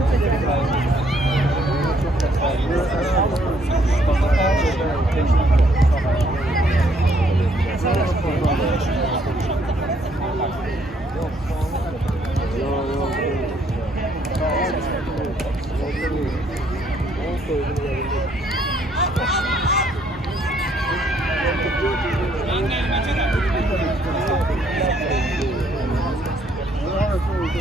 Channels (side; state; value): both; normal; correlation 0.68